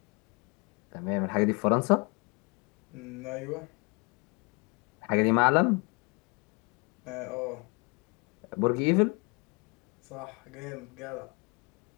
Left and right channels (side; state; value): right; quieter; 31.0 dB